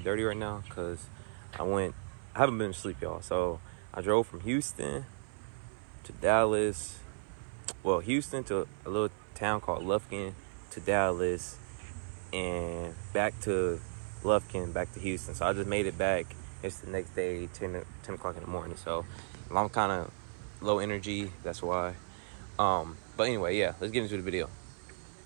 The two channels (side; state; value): left; silent; 55 dB below the other